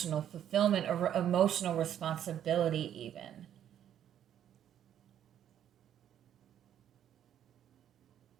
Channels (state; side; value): quieter; left; 10.3 dB